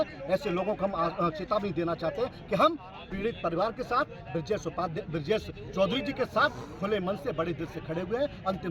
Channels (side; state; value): both; identical; correlation 1.00